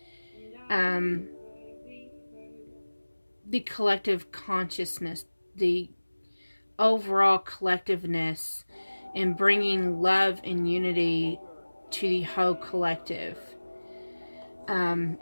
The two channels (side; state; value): both; inverted; correlation -1.00